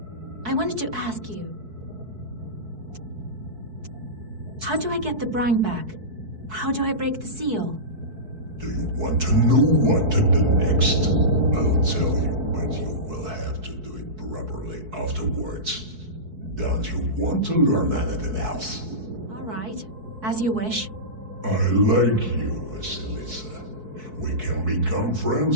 I wanted to ask you... How do I get the brine back? How do I break the seal? Do you want to know what to do next? I'll tell you, but you will have to do it properly afterwards. Don't you want to learn anything else? All right, as you wish. I like you, Vasilisa. We can become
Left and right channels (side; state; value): left; late; 4.6 ms